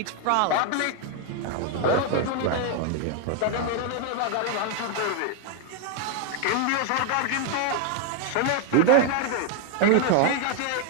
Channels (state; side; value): different; both; correlation 0.01